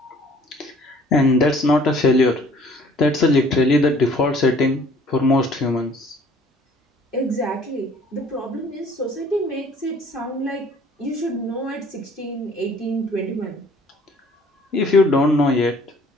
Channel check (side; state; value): both; normal; correlation 0.55